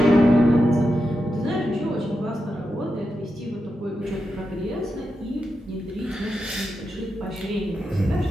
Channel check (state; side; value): normal; both; correlation 0.88